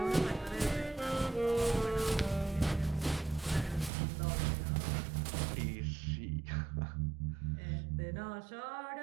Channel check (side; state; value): left; drops out; at 3.9 s